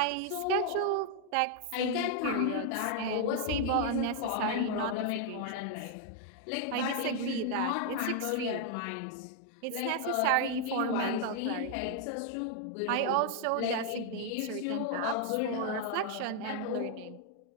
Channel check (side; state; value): both; different; correlation 0.00